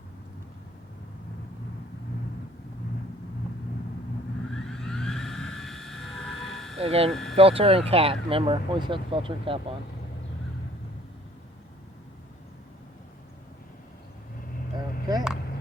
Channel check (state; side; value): normal; both; correlation 0.57